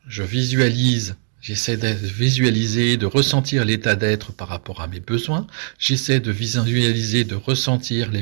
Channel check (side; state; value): left; silent; 55 dB below the other